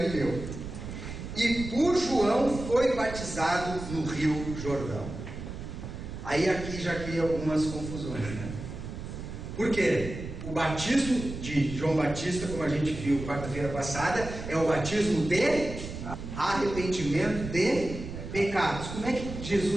E por João foi batizado no Rio Jordão. Aí aqui já cria algumas confusões, né? Por quê? O batismo de João Batista, como a gente viu quarta-feira passada, é o batismo de arrependimento de pecados. Como é que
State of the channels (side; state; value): right; noise; rumble, 9 dB below the sound